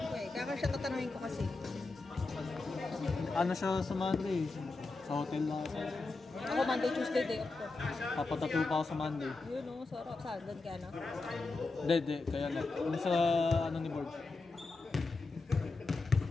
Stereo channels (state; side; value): quieter; right; 3.6 dB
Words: ko eh, kaya siya tatanungin ko kasi. Ano siya sa Monday? Sa hotel lang ako. Ako Monday, Tuesday, day off ko. Papatato pa ako sa Monday. Yun o, sarap. Saan? Doon ka na? Hindi. Kaya na. Ano sa ano ni Board?